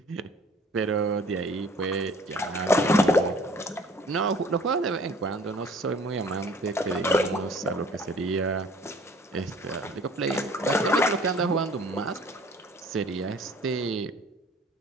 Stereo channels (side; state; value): both; normal; correlation 0.52